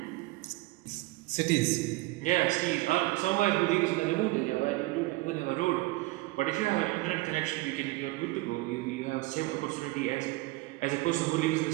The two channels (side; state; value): left; quieter; 20.9 dB